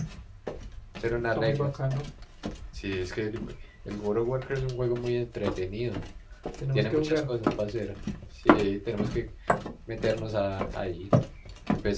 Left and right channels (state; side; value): identical; both; correlation 1.00